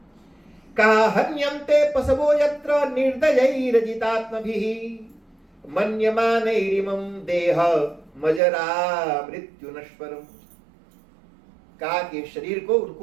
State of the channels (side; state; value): left; drops out; at 8.4 s